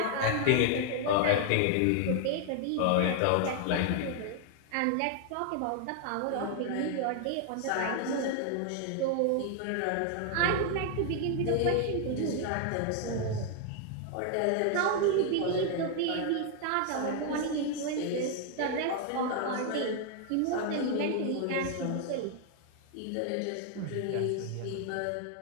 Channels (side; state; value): both; different; correlation 0.00